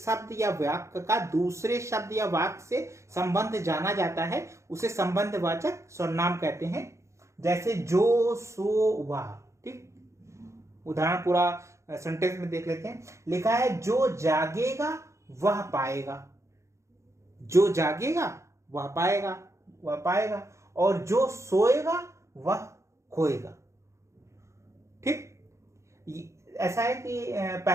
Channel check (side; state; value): left; late; 0.14 ms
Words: या वाक्य का दूसरे शब्द या वाक्य से संबंध जाना जाता है उसे संबंधवाचक सर्वनाम कहते हैं। जैसे जो, सो, वह, ठीक। उदाहरण पूरा सेंटेंस में देख लेते हैं। लिखा है जो जागेगा वह पाएगा, जो जागेगा वह पाएगा, वह पाएगा, और जो सोएगा वह खोएगा, ठीक। ऐसा है कि